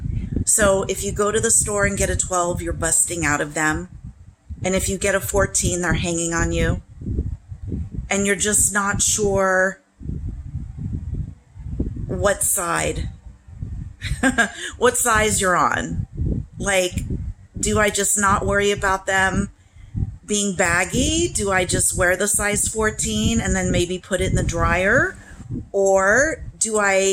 So if you go to the store and get a 12, you're busting out of them. And if you get a 14, they're hanging on you. And you're just not sure what side, what size you're on. Like, do I just not worry about them being baggy? Do I just wear the size 14 and then maybe put it in the dryer? Or do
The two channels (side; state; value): both; identical; correlation 1.00